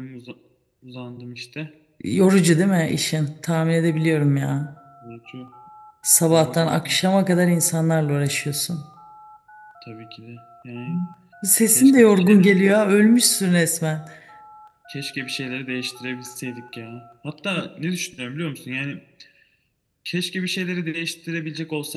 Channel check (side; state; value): both; identical; correlation 1.00